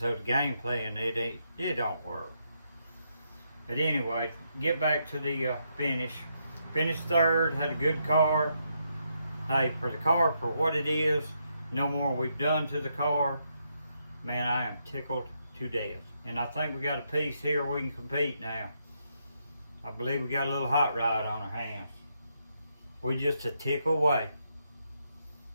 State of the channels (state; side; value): inverted; both; correlation -0.79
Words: game playing, it don't work. But anyway, get back to the finish. Finished third, had a good car. Hey, for the car, for what it is, no more we've done to the car. Man, I am tickled to death. And I think we got a piece here we can compete now. I believe we got a little hot rod on our hands. We're just a tick away.